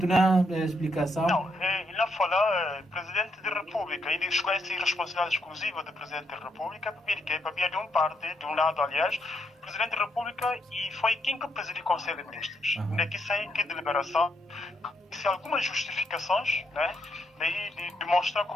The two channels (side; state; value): both; normal; correlation 0.77